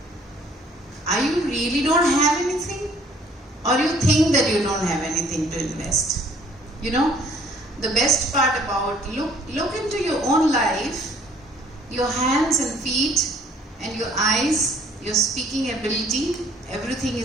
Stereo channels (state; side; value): normal; both; correlation 0.58